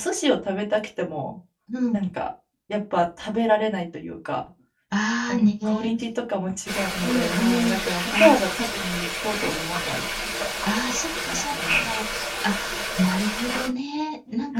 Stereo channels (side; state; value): both; identical; correlation 1.00